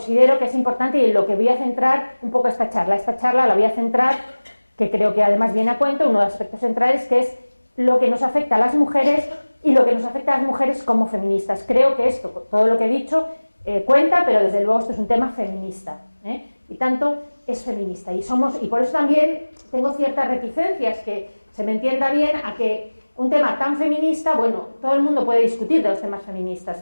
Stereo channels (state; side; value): inverted; both; correlation -1.00